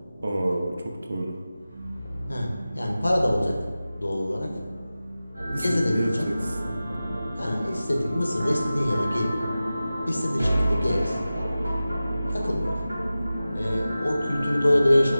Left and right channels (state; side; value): inverted; both; correlation -0.95